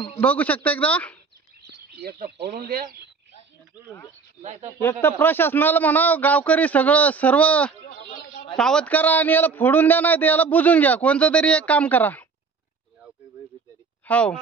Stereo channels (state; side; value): quieter; left; 5.1 dB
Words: शकता एकदा. एक तर प्रशासनाला म्हणा गावकरी सर्व सावध करा आणि याला फोडून द्या, नाही तर याला बुजून घ्या. कोणतं तरी एक काम करा. हो,